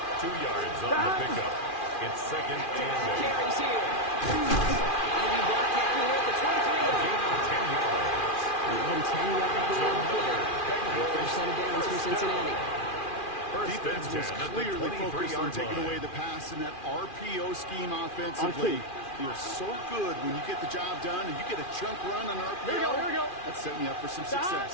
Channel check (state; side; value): late; right; 2.4 ms